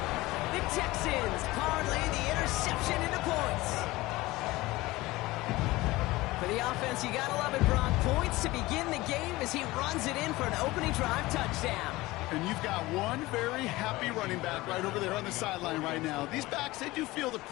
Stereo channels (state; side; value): quieter; right; 19.6 dB